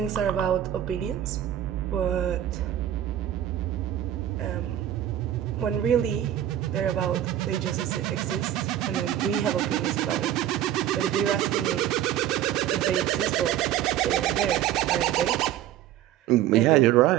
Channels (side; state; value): left; quieter; 11.7 dB